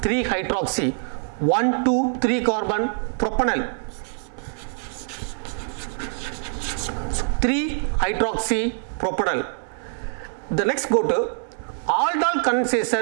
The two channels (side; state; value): left; silent; 62 dB below the other